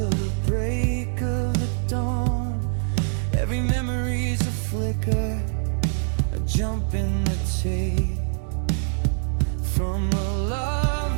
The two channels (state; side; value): silent; left; digital silence